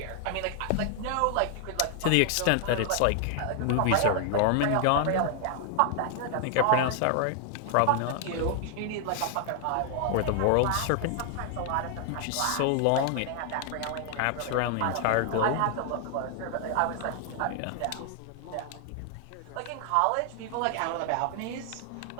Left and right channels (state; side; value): different; both; correlation 0.00